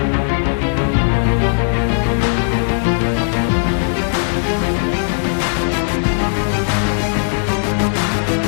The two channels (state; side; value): silent; right; digital silence